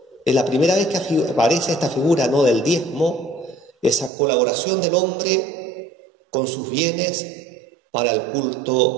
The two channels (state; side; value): drops out; left; at 4.1 s